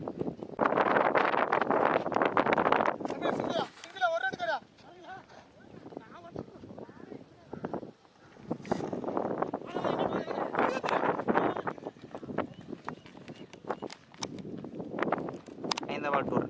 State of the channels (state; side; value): identical; both; correlation 1.00